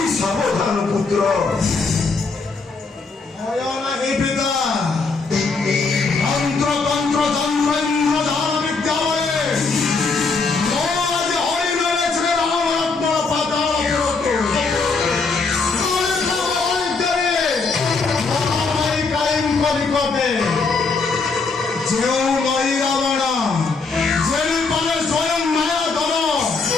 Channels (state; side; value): quieter; right; 4.3 dB